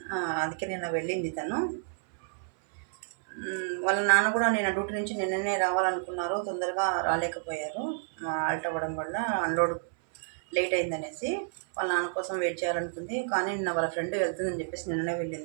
అందుకే నిన్న వెళ్ళింది తను. వాళ్ళ నాన్న కూడా నేను డ్యూటీ నుంచి నిన్ననే రావాలనుకున్నారు, తొందరగా రాలేకపోయారు. ఆల్ట్ అవ్వడం వల్ల అన్లోడ్ లేట్ అయిందనేసి వాళ్ళ నాన్న కోసం వెయిట్ చేయాలనుకుంది. కానీ నిన్న వాళ్ళ ఫ్రెండ్ వెళ్తుందని చెప్పేసి నిన్ననే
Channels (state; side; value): silent; left; 58 dB below the other